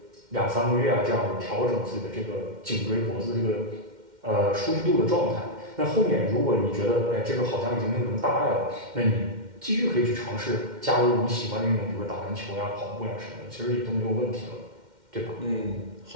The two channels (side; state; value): left; late; 2.1 ms